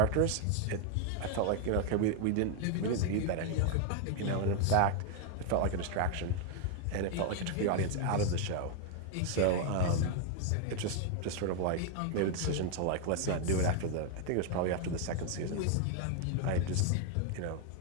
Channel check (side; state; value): both; different; correlation 0.00